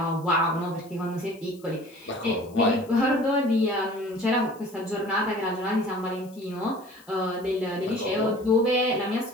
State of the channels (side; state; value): left; noise; hiss, 26 dB below the sound